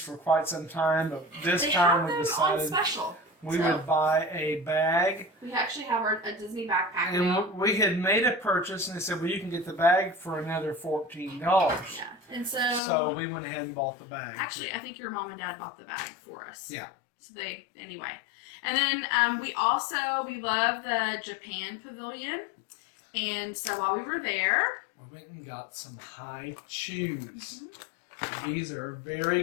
quite some time, but this time we decided on special. We would buy a bag. We actually have a Disney backpack and now. We had made a purchase, and they said, well, you can get the bag for another $14. Yeah. And so we went ahead and bought the bag. Actually, I think your mom and dad bought the bag for us. Yeah. So anyway. And then we love the Japan Pavilion. And so while we were there, we went and got some high chews. These are very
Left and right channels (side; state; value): right; drops out; at 12.8 s